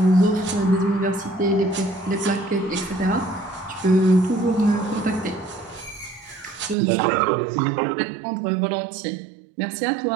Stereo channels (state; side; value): drops out; left; at 6.8 s